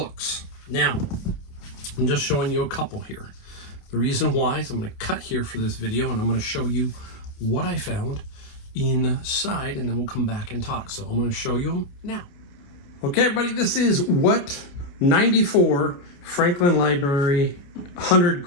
Now, I'm just showing you a couple here. The reason why is I'm going to cut here for this video, and I'm going to show you what I found inside, and then we'll come back and talk. So I'm going to show you them now. Okay, everybody, this is what 94 Franklin Library 100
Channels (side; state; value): right; late; 28 ms